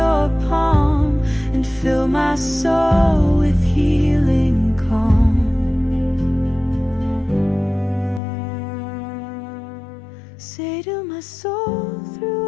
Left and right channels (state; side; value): drops out; right; at 8.2 s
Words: palm and fill my soul with healing calm. Say to my soul